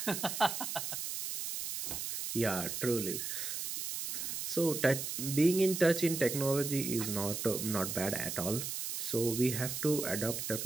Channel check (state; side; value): noise; right; hiss, 4 dB below the sound